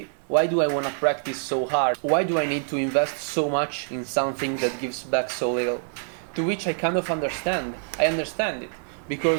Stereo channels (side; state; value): left; silent; 59 dB below the other